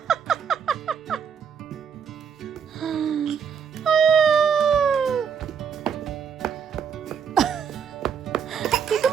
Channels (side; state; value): left; quieter; 7.1 dB